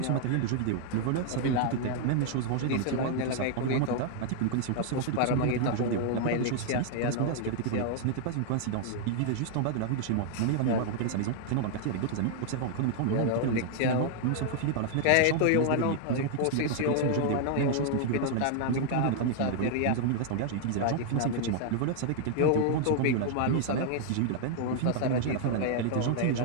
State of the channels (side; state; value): both; different; correlation 0.00